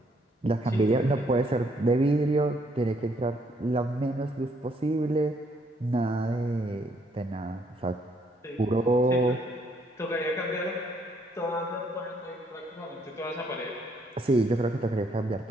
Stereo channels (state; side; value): normal; both; correlation 0.69